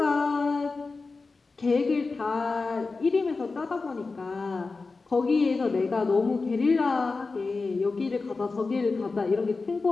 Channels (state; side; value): quieter; right; 4.0 dB